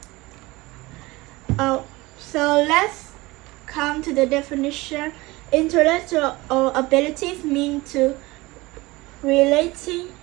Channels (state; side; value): quieter; left; 21.4 dB